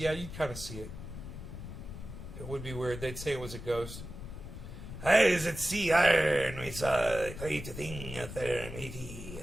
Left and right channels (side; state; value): left; noise; rumble, 10 dB below the sound